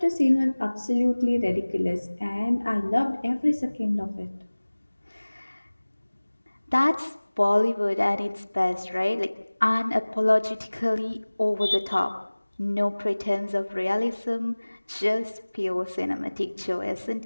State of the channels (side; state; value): both; inverted; correlation -1.00